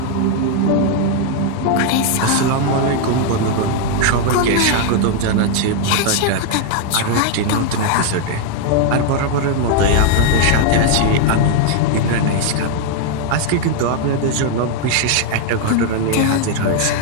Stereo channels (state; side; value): different; both; correlation 0.00